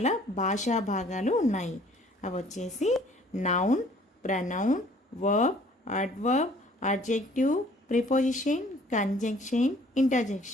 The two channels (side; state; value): both; normal; correlation 0.56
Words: భాషా భాగాలు ఉన్నాయి. అవి వచ్చేసి noun, pronoun, verb, adverb, adjective, preposition, conjunction,